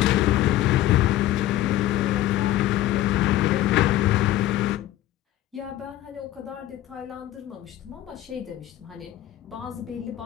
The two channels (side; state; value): right; quieter; 14.3 dB